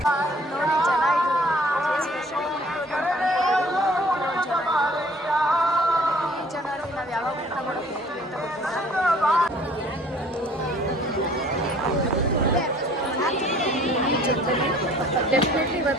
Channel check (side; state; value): both; normal; correlation 0.55